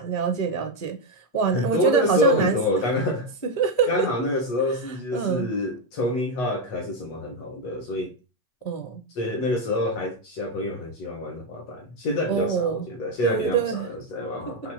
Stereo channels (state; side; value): late; right; 8.1 ms